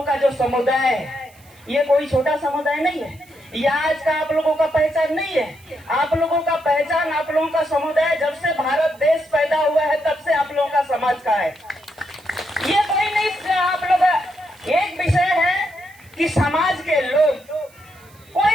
का जो समुदाय है, ये कोई छोटा समुदाय नहीं है, यह आज का आप लोगों का पहचान नहीं है। आप लोगों का पहचान, आप लोगों का समुदाय जब से भारत देश पैदा हुआ है तब से आप लोगों का समाज का है। ये कोई नहीं, आप लोग एक विषय है कि समाज के लोग, कोई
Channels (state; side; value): noise; right; hiss, 28 dB below the sound